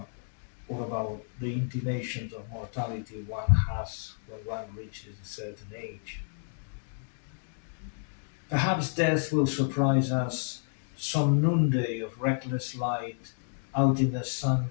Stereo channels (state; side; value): silent; right; digital silence